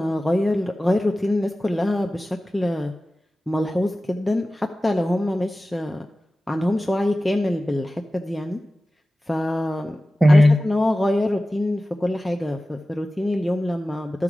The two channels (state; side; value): normal; both; correlation 0.96